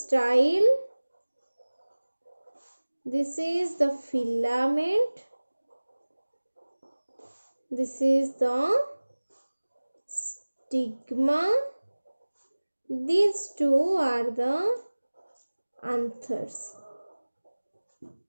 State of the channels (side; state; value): both; inverted; correlation -1.00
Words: this is the filament, this is the stigma. These two are the anthers.